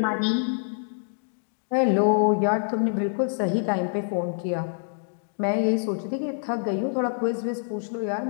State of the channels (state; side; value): silent; right; digital silence